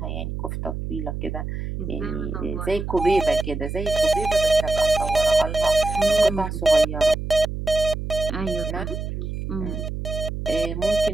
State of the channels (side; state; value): right; noise; hum, 5 dB below the sound